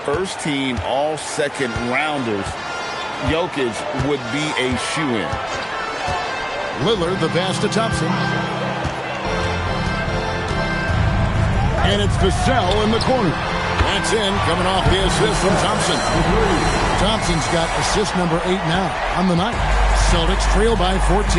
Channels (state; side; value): identical; both; correlation 1.00